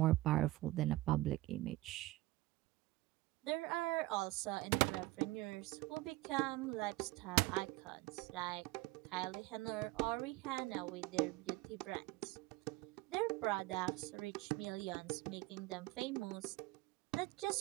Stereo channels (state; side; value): quieter; left; 18.9 dB